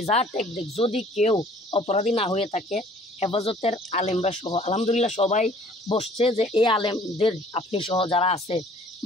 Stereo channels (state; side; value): normal; both; correlation 0.54